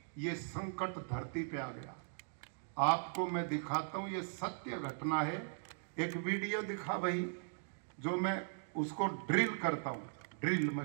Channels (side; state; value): left; silent; digital silence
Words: ये संकट धरती पे आ गया। आपको मैं दिखाता हूं, ये सत्य घटना है। एक वीडियो दिखा भाई, जो मैं उसको ड्रिल करता हूं ड्रिल